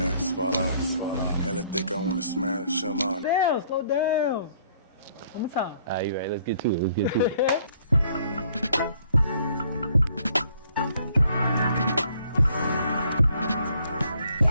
fall off. Hella thick, I wanna smash them on. Slow down. One more time. Alright, you right. Let's get to it.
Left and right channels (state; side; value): inverted; both; correlation -0.64